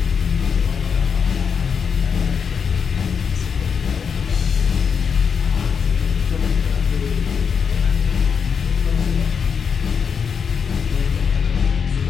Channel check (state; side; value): quieter; right; 6.4 dB